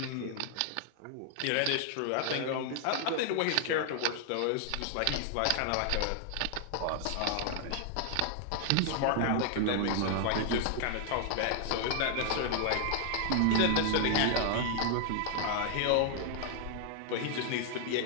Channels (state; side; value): different; both; correlation 0.00